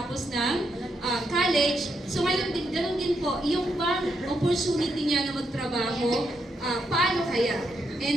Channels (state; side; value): normal; both; correlation 0.80